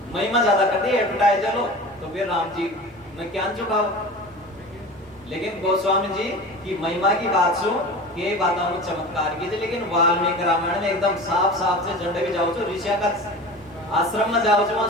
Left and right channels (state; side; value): normal; both; correlation 0.34